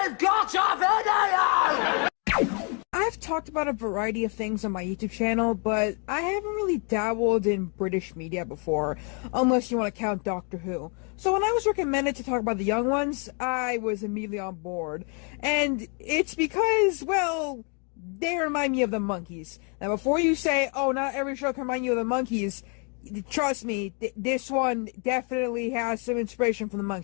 got a video! I've talked about a variety of things on my YouTube channel, but I haven't really dabbled in British media before, unless you want to count Doctor Who. So when I was recommended to talk about the young ones, I was immediately on board. And it's because, well, they remind me of the Monkees. Now before you say, oh, not every show can remind you of the Monkees, trust me, this one definitely has some inspiration from the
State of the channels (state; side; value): quieter; right; 37.3 dB